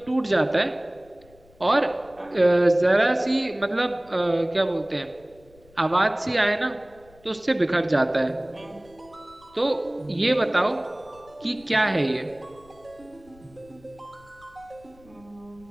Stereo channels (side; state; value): left; noise; rumble, 27 dB below the sound